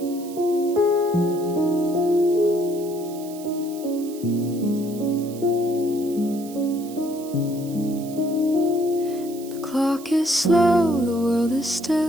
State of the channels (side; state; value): right; noise; hiss, 18 dB below the sound